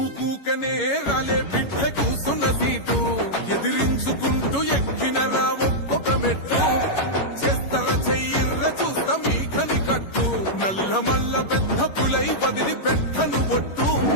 రాలే బిడ్డ కూసున్న సీటు ఎదిరించుకుంటూ ఎక్కినరా ఒక్కొక్క మెట్టు చేస్తర చెయ్యిర్ర చూస్తా మీ కని కట్టు నల్ల మల్ల పెద్ద పులై వదిలి పెట్టను ఒట్టు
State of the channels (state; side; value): late; right; 11 ms